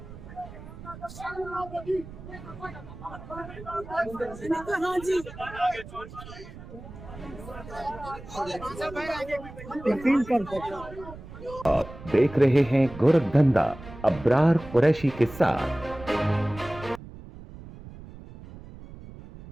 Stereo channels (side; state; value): right; noise; rumble, 15 dB below the sound